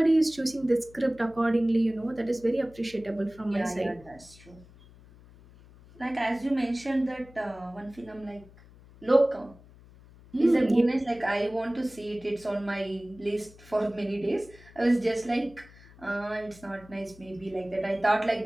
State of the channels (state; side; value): noise; left; hum, 23 dB below the sound